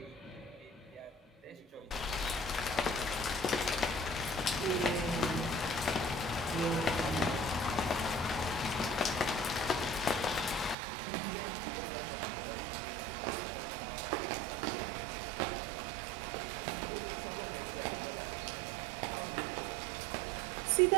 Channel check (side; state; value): left; drops out; at 10.8 s